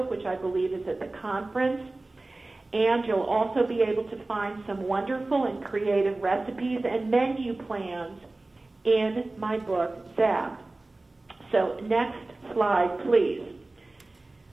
which I believe is at the conference. And you'll also be able to find some wonderful and creative recipes and menu plans in my book, Zapped. So next slide, please.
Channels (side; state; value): left; quieter; 3.0 dB